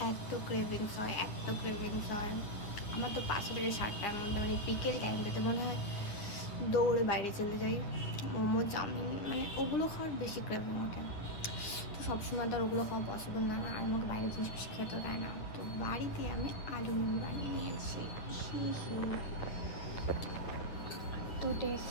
এত ক্রেভিংস হয়, এত ক্রেভিংস হয়? আমার তো 5টা থেকে 7টার মধ্যে মানে বিকেল টাইমটাতে মনে হয় দৌড়ে বাইরে চলে যাই, মোমো চাউমিন মানে ওগুলো খাওয়ার বেশি ক্রেভিং ওঠে। তো সবসময় তো আর ওগুলো খাওয়া পসিবল না, আর আমাকে বাইরের জিনিস বেশি খেতে দেয় না। তো বাড়িতে আমি আলু মিমি বানিয়ে নিয়েছি। এত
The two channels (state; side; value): late; right; 9.6 ms